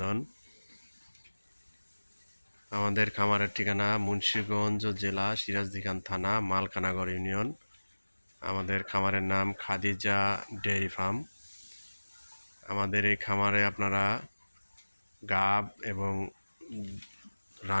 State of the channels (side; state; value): both; inverted; correlation -1.00